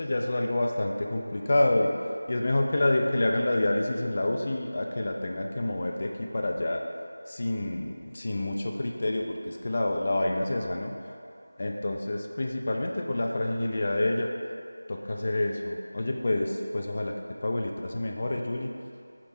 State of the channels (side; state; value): both; inverted; correlation -0.98